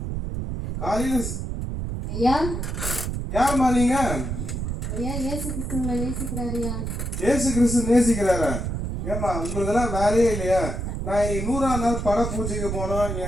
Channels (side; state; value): right; noise; rumble, 3 dB below the sound